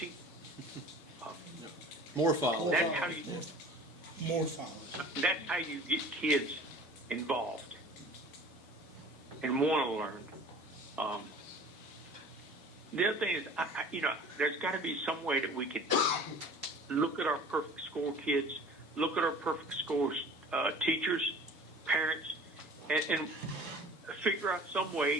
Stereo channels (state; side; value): normal; both; correlation 0.44